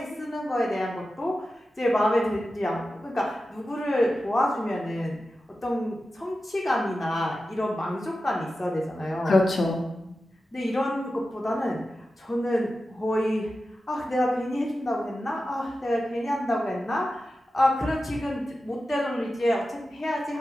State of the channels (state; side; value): normal; both; correlation 0.93